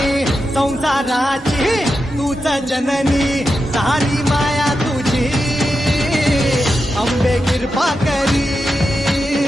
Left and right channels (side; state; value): both; normal; correlation 0.89